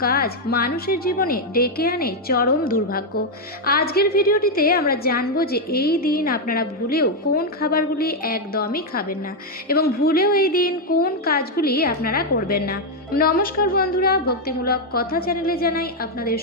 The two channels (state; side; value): normal; both; correlation 0.01